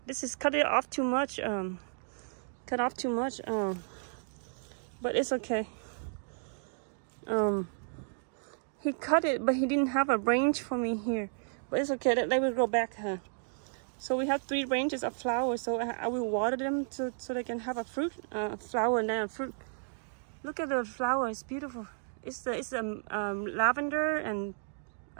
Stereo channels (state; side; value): silent; left; digital silence